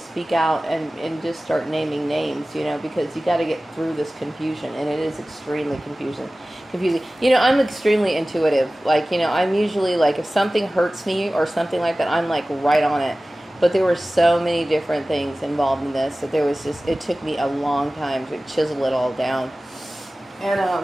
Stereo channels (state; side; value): normal; both; correlation 0.97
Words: out and just start naming names, because you got to get through this confusion, and it is extremely confusing. I'm extremely intuitive. I'm usually, if something hurts me or something like that, I'm right on it. But there were so many different things involved in this that it took me a long time to chisel it all down.